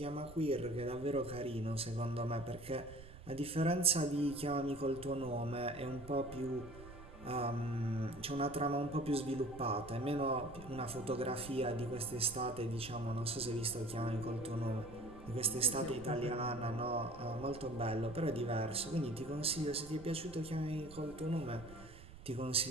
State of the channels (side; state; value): right; noise; rumble, 16 dB below the sound